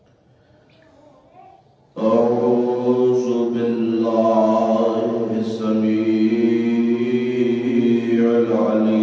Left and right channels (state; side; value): identical; both; correlation 1.00